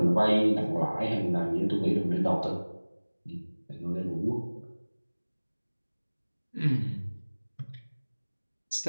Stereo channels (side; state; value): both; inverted; correlation -1.00